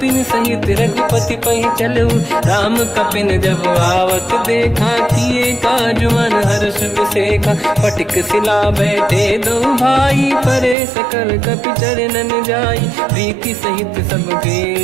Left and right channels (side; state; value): left; drops out; at 10.8 s